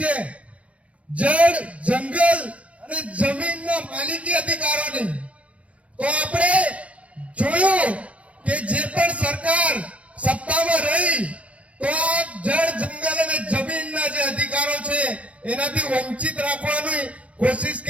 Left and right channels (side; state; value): left; late; 0.064 ms